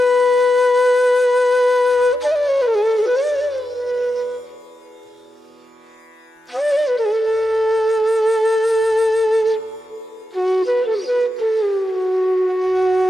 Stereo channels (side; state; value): both; normal; correlation 0.88